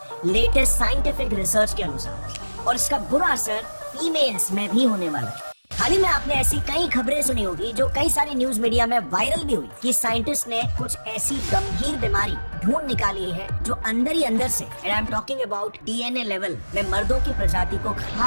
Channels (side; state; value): both; inverted; correlation -1.00